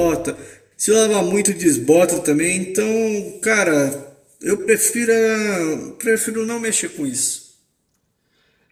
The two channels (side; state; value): both; identical; correlation 1.00